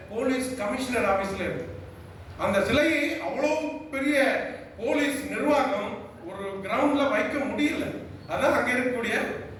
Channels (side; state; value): both; identical; correlation 1.00